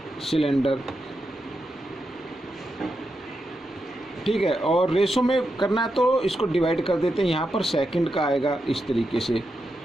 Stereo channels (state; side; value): normal; both; correlation 0.86